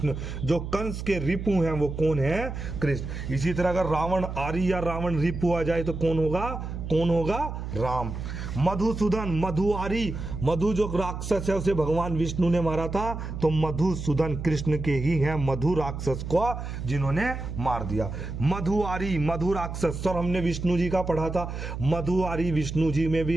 जो कंस के रिपु हैं वो कौन है? कृष्ण। इसी तरह अगर रावण आरी या रावण रिपु आ जाए तो कौन होगा? कौन होगा? राम। मधुसूदन, मधुआरी, मधु जो राक्षस है उसे भगवान विष्णु ने मारा था, तो मधुसूदन कृष्ण के ही हैं, मधु राक्षस को जिन्होंने मार दिया। मधुआरी, मधु राक्षस, सर हमने विष्णु जी का पढ़ा था। मधुआरी विष्णु जी में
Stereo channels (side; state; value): right; noise; hum, 6 dB below the sound